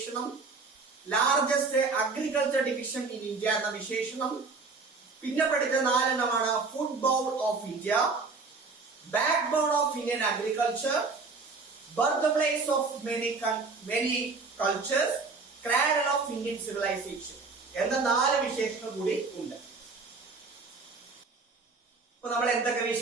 largest agriculture division in India എന്ന വിശേഷണം. പിന്നെ പഠിച്ച 4 എണ്ണമാണ് football of India, backbone of Indian agriculture, birthplace of many cultures, cradle of Indian civilisation എന്ന 4 വിശേഷണം കൂടി ഉണ്ട്. ഇപ്പൊ നമ്മൾ എന്തൊക്കെ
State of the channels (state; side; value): quieter; left; 4.2 dB